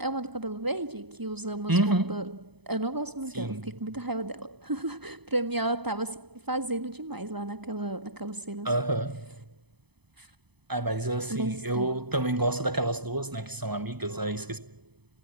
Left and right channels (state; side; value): late; left; 0.98 ms